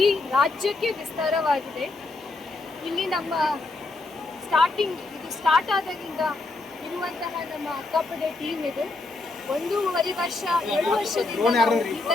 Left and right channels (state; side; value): quieter; right; 3.3 dB